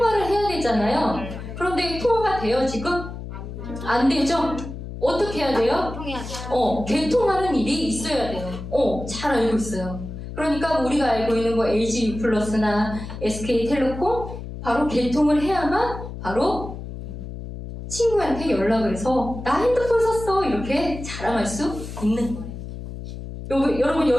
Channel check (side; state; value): left; noise; hum, 9 dB below the sound